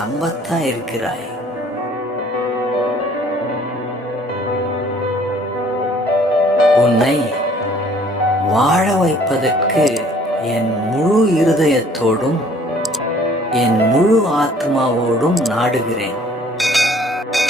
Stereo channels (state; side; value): normal; both; correlation 0.56